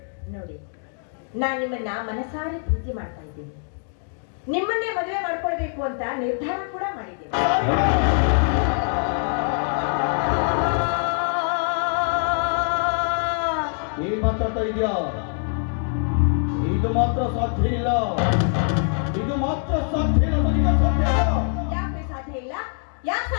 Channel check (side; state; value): right; silent; 62 dB below the other